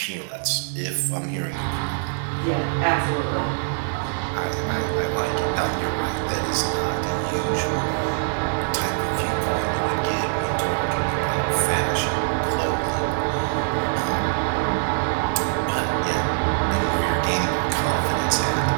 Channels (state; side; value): silent; left; digital silence